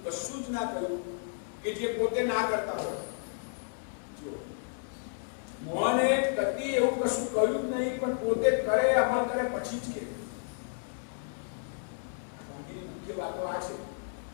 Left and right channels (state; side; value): silent; right; digital silence